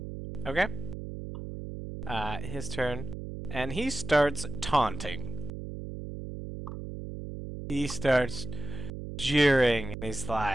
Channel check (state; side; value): noise; right; hum, 6 dB below the sound